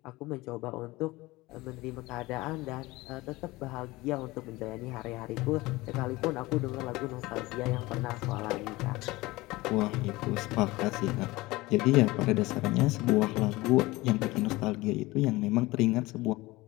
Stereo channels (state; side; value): quieter; right; 20.5 dB